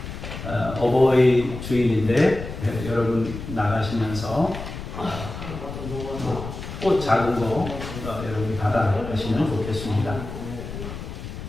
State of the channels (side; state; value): left; noise; rumble, 9 dB below the sound